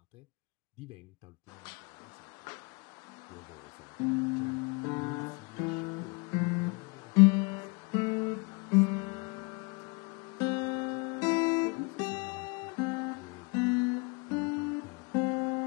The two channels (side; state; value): right; quieter; 30.9 dB